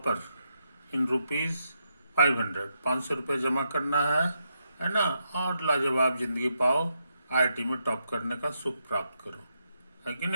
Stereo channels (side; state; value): both; inverted; correlation -0.82